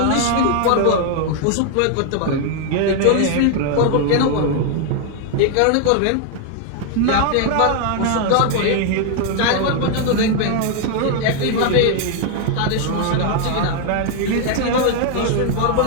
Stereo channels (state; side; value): different; both; correlation 0.00